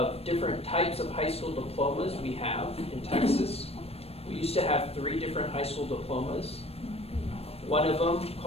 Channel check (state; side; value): late; right; 0.29 ms